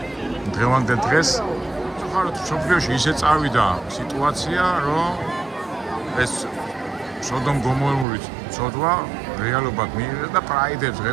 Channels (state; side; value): drops out; left; at 8.1 s